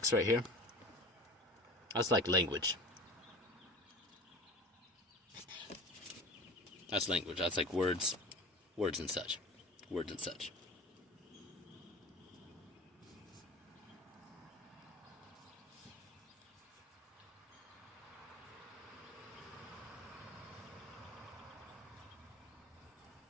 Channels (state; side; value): normal; both; correlation 0.37